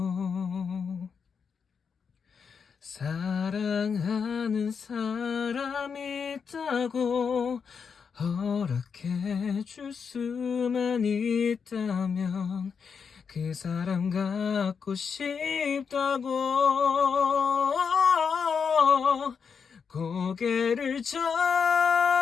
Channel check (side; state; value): right; quieter; 6.2 dB